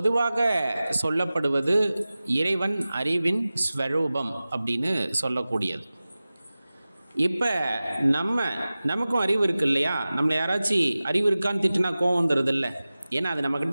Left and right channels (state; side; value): inverted; both; correlation -0.97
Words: சொல்லப்படுவது இறைவன் அறிவின் ஸ்வரூபம் அப்படின்னு சொல்லக்கூடியது. இப்போ நமக்கும் அறிவு இருக்கு இல்லையா? நம்மளை யாராச்சும் அறிவு இருக்கான்னு திட்டுனா கோவம் வந்துடுது இல்லை? ஏன்னா அது